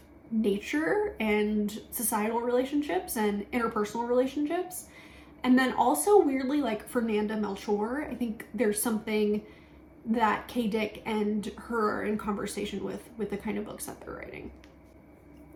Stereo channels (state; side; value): identical; both; correlation 1.00